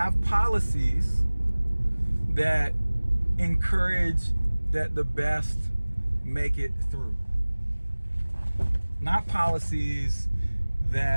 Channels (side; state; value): both; inverted; correlation -1.00